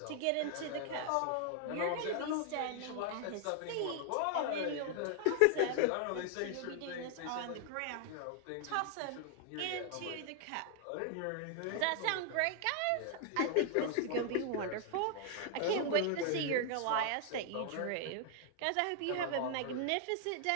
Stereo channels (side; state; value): both; different; correlation 0.00